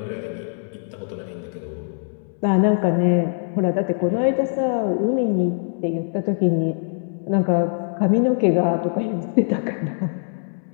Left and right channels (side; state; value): right; silent; digital silence